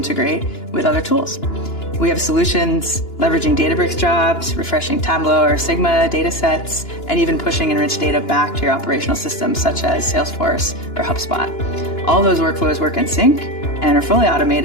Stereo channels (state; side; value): late; right; 2.9 ms